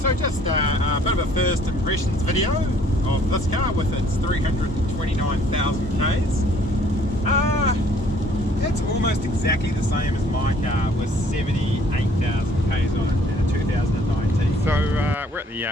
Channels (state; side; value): normal; both; correlation 0.59